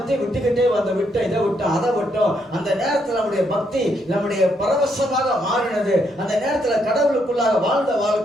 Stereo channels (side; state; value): both; normal; correlation 0.75